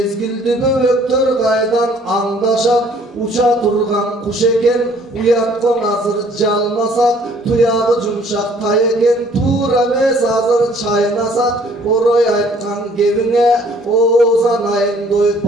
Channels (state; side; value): normal; both; correlation 0.58